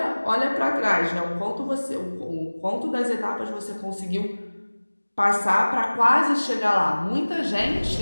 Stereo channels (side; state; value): both; inverted; correlation -1.00